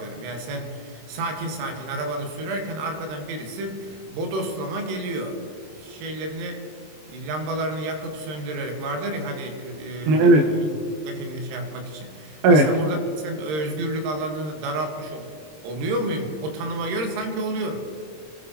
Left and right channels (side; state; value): left; late; 26 ms